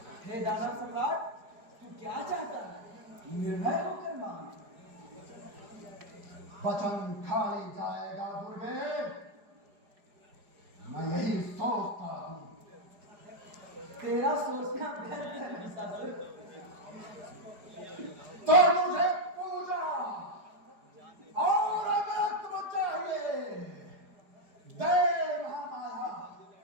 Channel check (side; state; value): left; late; 4.9 ms